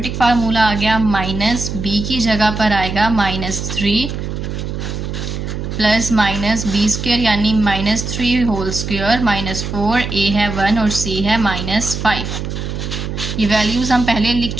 फार्मूला आ गया। -b की जगह पर आएगा -3 + -b² यानी -3 होल स्क्वायर -4a है 1 और c है -5। ये वैल्यूज़ हम पहले लिख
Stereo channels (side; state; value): right; noise; hum, 5 dB below the sound